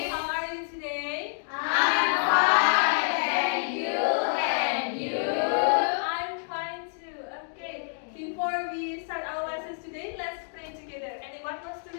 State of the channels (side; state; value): right; silent; digital silence